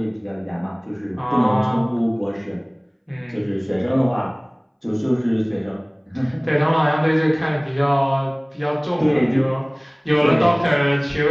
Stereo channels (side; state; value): both; identical; correlation 1.00